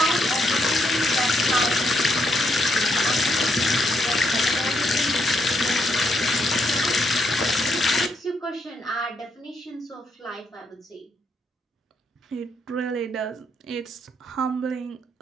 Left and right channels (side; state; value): both; normal; correlation 0.77